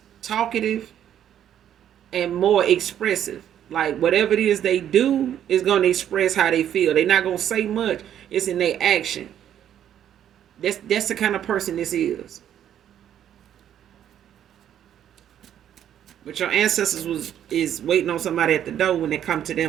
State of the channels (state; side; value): quieter; left; 10.3 dB